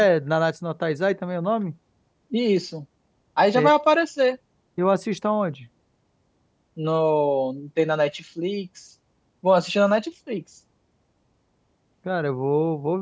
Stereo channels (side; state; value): both; identical; correlation 1.00